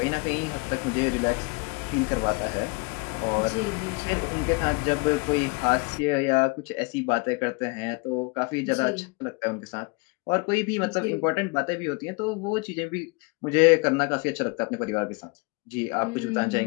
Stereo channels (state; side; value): quieter; right; 29.0 dB